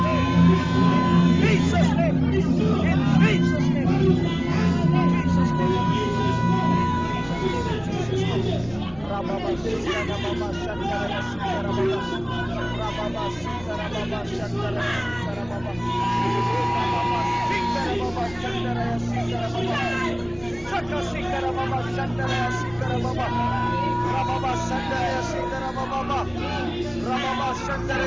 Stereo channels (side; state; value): left; noise; rumble, 21 dB below the sound